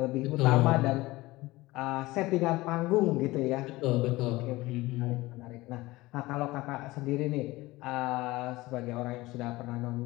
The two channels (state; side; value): quieter; right; 19.7 dB